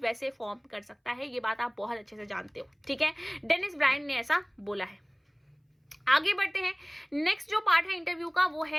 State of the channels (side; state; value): both; identical; correlation 1.00